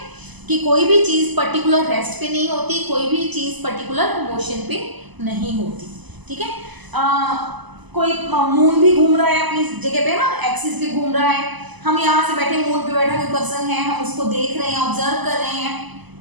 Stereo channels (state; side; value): late; left; 1.0 ms